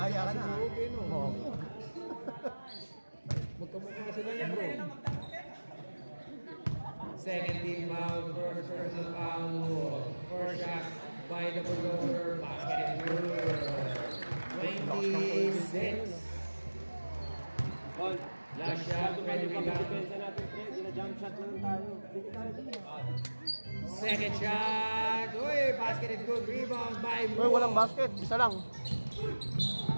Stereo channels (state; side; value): inverted; both; correlation -1.00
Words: ka na. Moog. Magkamukha sila niya, bro. Second team foul. First personal foul. First shot by the Bulldozer. Basket is good. 26. Last shot, ready rebound. Second shot. Uy, basket is good. Rebound by Uy, walang basket. Isa lang.